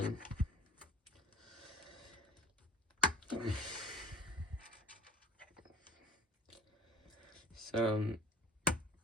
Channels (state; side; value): normal; both; correlation 0.45